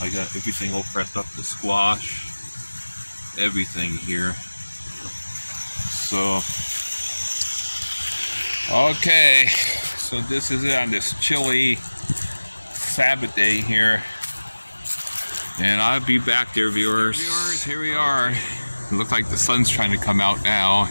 got everything all prepped up, the squash, everything here. So, okay, so this is it on this chilly Sabbath day here. And I'll be back there, viewers. Here we are. It looks like the sun's trying to come out now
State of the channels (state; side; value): inverted; both; correlation -1.00